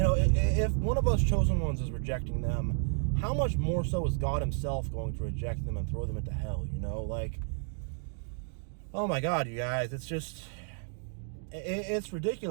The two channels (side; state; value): left; silent; 57 dB below the other